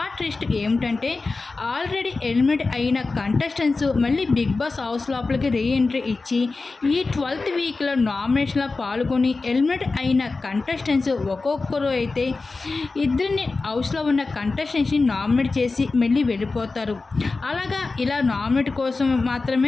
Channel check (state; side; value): quieter; right; 3.8 dB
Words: ట్విస్ట్ ఏమిటంటే ఆల్రెడీ ఎలిమినేట్ అయిన కంటెస్టెంట్స్ మళ్ళీ బిగ్ బాస్ హౌస్ లోపలికి రీఎంట్రీ ఇచ్చి ఈ 12th వీక్లో నామినేషన్లో పాల్గొని ఎలిమినేట్ అయిన కంటెస్టెంట్స్ ఒక్కొక్కరు అయితే ఇద్దరిని హౌస్లో ఉన్న కంటెస్టెంట్స్ని నామినేట్ చేసి మళ్ళీ వెళ్ళిపోతారు. అలాగా ఇలా నామినేట్ కోసం